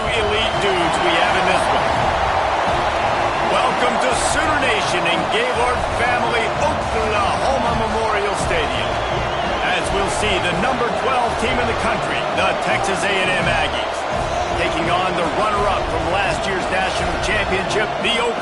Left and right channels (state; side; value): identical; both; correlation 1.00